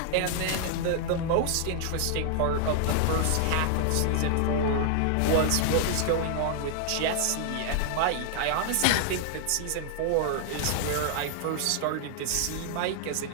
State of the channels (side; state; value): both; different; correlation 0.00